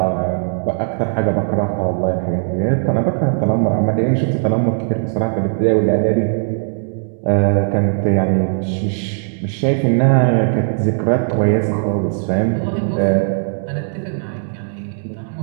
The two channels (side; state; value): left; silent; 66 dB below the other